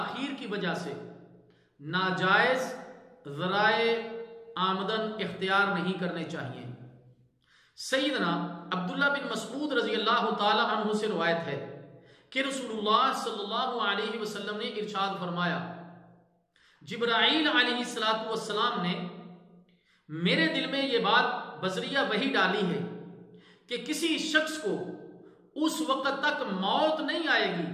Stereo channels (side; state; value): both; identical; correlation 1.00